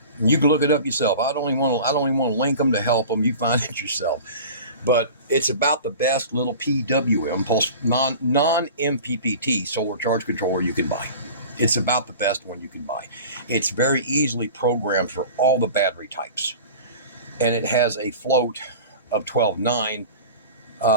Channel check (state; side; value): inverted; both; correlation -0.38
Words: And you can look it up yourself. I don't even want to link them to help them. You find it yourself. But it's about the best little PWM, pulse non-MPPT solar charge controller you can buy. It's about the best one you can buy. It's very easily programmed for all the battery types, and it has a float of 12.9